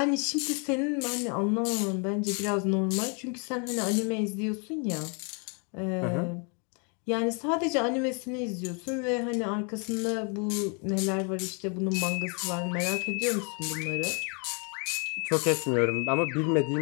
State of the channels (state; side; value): quieter; right; 37.0 dB